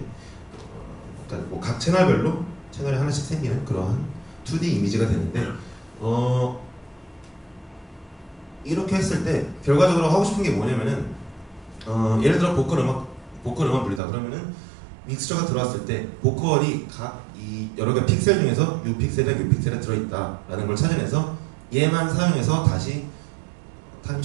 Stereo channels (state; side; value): drops out; left; at 14.0 s